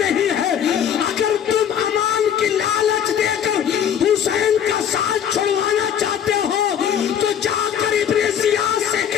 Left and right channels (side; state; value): right; quieter; 8.9 dB